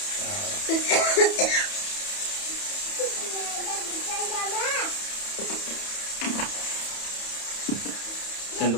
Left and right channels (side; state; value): right; late; 31 ms